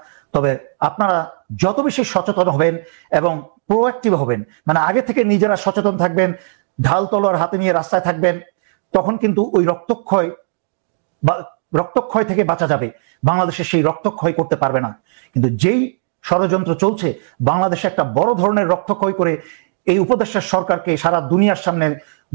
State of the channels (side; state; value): left; silent; digital silence